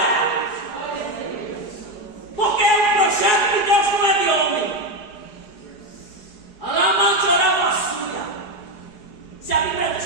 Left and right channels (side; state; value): right; late; 4.8 ms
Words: Porque o projeto de Deus não é de homem. A lamantora vassoura. Se a Bíblia diz